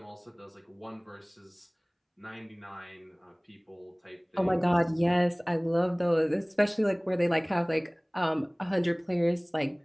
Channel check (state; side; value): identical; both; correlation 1.00